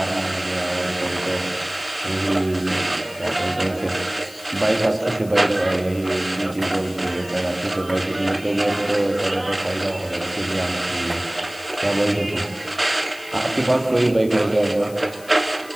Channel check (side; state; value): left; noise; hiss, 20 dB below the sound